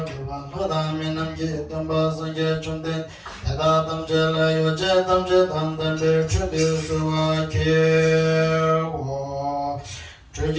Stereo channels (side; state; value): both; identical; correlation 1.00